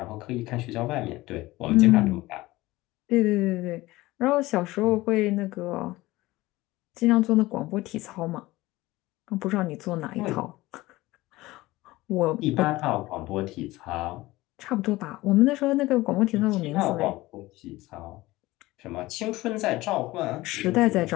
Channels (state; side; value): quieter; right; 18.9 dB